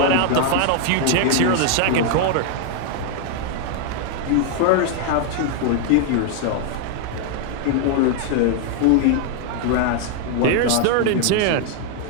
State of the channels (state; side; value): different; both; correlation 0.00